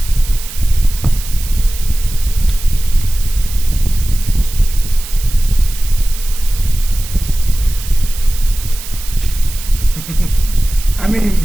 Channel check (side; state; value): right; noise; hiss, 12 dB below the sound